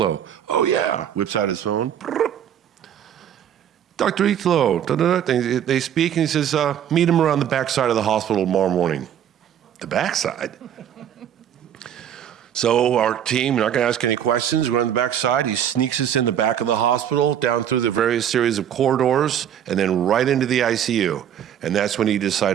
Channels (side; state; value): left; quieter; 9.7 dB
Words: Oh, yeah. Whips out his phone. Dr. Italo. They speak, and he says, meet him around the backside of the hospital tomorrow morning. The backside? So our team, we're not going to ask any questions. We're on the backside. He sneaks us in the back of the hospital, down through the various series of corridors, and then right into the ICU. And that's when he